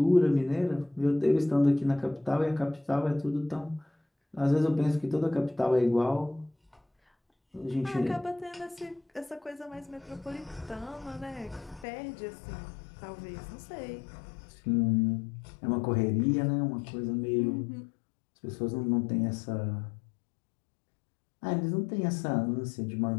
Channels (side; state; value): right; drops out; at 11.9 s